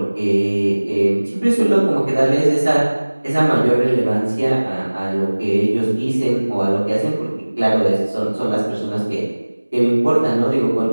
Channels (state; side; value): inverted; both; correlation -1.00